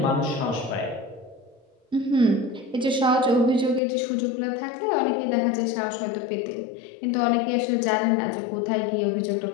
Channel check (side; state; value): right; drops out; at 3.8 s